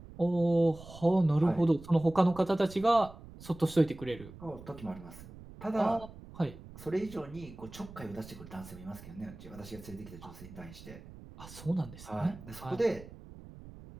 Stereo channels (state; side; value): noise; right; rumble, 17 dB below the sound